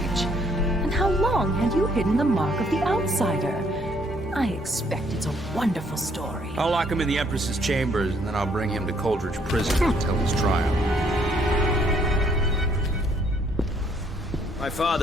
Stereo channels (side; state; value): both; normal; correlation 0.66